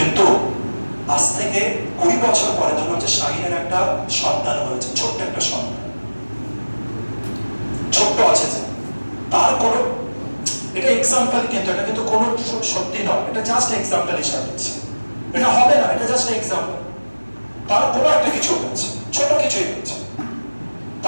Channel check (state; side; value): inverted; both; correlation -1.00